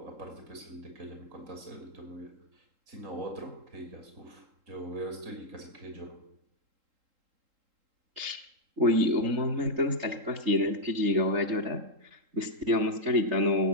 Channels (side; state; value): left; late; 3.8 ms